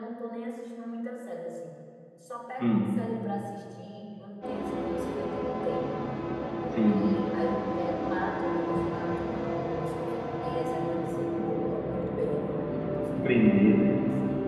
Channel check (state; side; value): identical; both; correlation 1.00